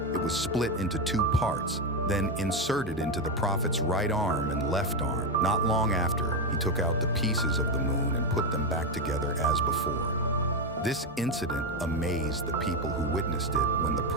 it was split into 2 parts, then inserted into the Prophet's right arm and left arm. Not long after, he took out the pieces of the moon and put them back together as before. This incident amazed the people who witnessed it when the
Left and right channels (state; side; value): normal; both; correlation 0.09